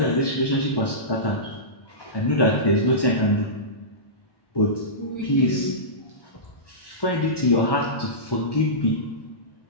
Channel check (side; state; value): right; late; 1.1 ms